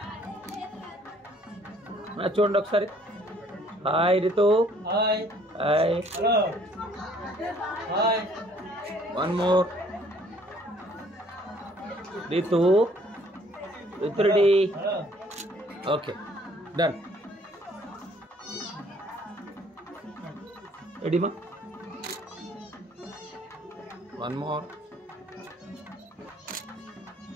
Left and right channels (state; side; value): normal; both; correlation 0.60